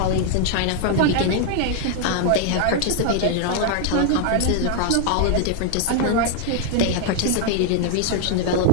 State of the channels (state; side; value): different; both; correlation 0.00